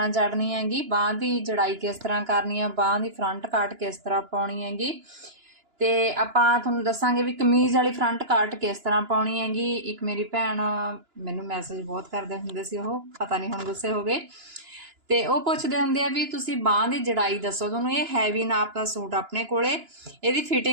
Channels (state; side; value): late; left; 2.9 ms